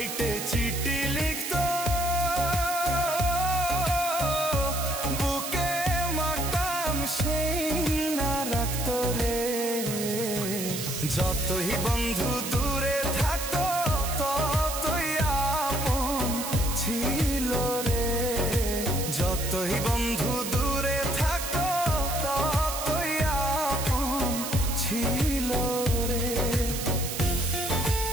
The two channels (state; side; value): noise; right; hiss, 5 dB below the sound